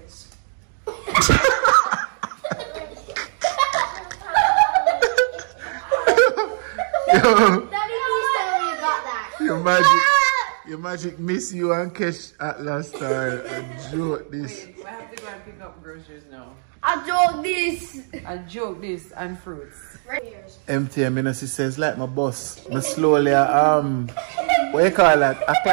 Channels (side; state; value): left; silent; digital silence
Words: Yo, Daddy, please tell me you got that. your magic miss you and catch at last time. I joke this. Wait, I have to go and pick up groceries now. I joke this. I joke this and fruits. Empty, I mean, as he says, like my boss. I slowly, what you call that?